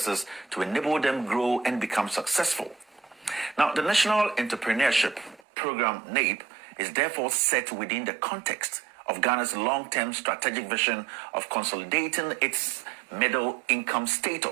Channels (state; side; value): drops out; left; at 5.4 s